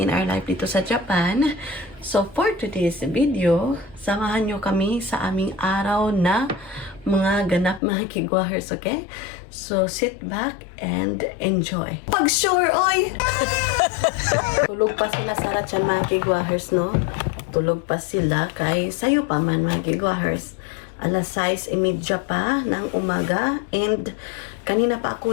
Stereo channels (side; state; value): right; drops out; at 7.8 s